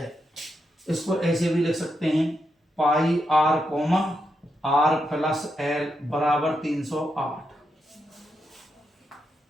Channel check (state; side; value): normal; both; correlation 0.83